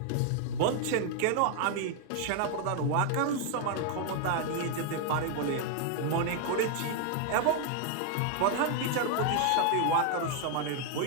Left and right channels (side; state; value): both; different; correlation 0.00